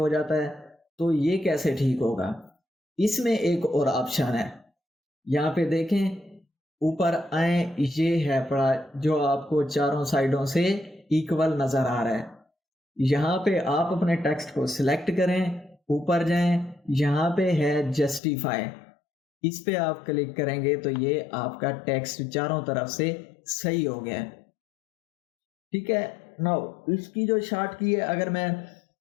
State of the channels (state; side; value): drops out; right; at 18.2 s